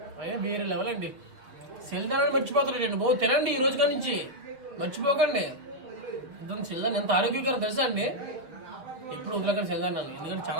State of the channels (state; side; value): late; left; 7.0 ms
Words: అయ్యా వేరే లెవెల్ అండి. సెల్దానాన్ని మర్చిపోతారండి బాబు, తినండి ఈ రోజు కాడి నుంచి, మర్చిపోకండి. సెల్దాన్ ఎంత ఆరోగ్యకరం తెలుసా అండి? ఎప్పుడు వదిలేకండి సెల్దానాన్ని, ఎందుకంటే